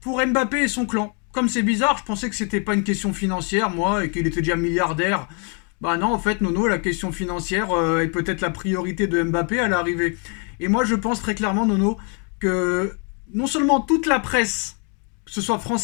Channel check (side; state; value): right; quieter; 37.5 dB